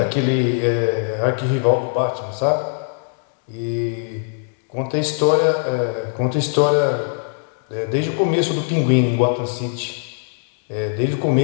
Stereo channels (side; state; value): right; silent; 65 dB below the other